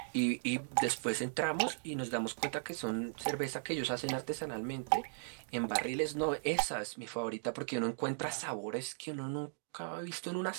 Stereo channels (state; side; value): silent; left; digital silence